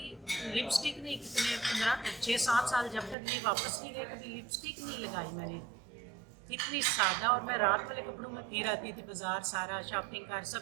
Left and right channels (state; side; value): drops out; left; at 3.2 s